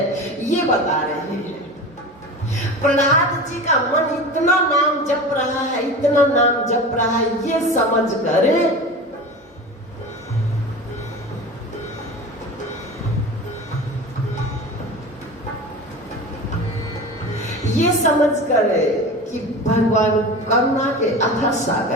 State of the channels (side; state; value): both; normal; correlation 0.31